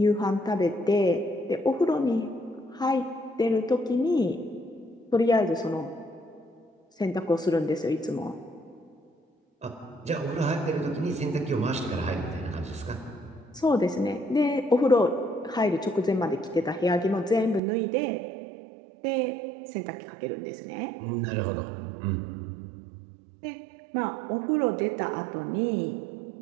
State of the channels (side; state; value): left; drops out; at 17.6 s